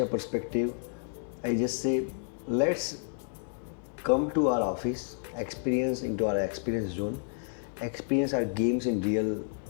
perspective, I just say let's come to our office, experience into our experience zone, experience our games in real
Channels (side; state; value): right; silent; digital silence